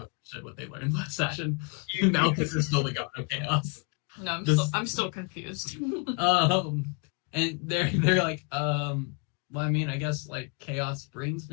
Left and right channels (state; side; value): quieter; right; 35.3 dB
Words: understood what they learned last session. Malchus is still the god of chaos. No, I'm still confused. And they're like, well, I mean, I guess like chaos brings